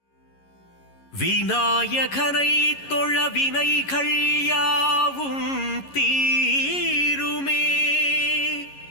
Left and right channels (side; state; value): right; late; 11 ms